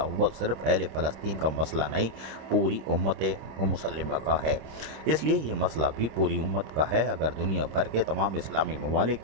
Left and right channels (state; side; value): late; left; 26 ms